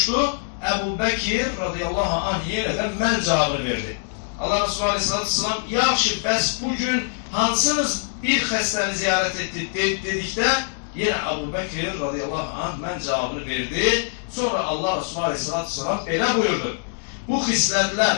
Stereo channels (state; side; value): silent; right; digital silence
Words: Ebu Bekir radıyallahu anh yine de men cevabını verdi. Allah Resulü Aleyhisselatü Vesselam yaxşı bəs bugün hansınız bir xəstəni ziyaret etti dedikdə yine Ebu Bekir radıyallahu anh men cevabını verdi. Sonra Allah Resulü Aleyhisselatü Vesselam belə buyurdu. Bu